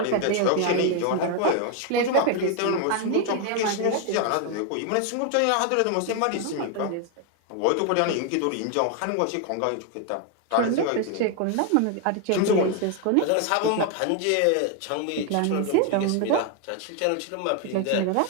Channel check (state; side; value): different; both; correlation 0.01